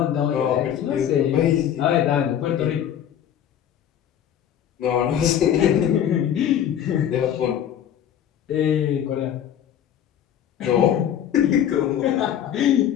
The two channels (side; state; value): right; quieter; 9.9 dB